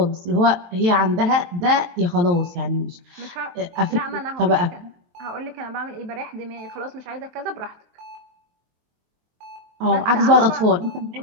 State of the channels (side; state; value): left; late; 23 ms